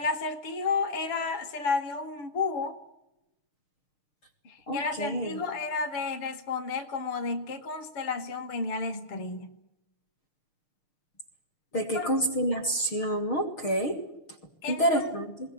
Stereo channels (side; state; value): right; late; 6.4 ms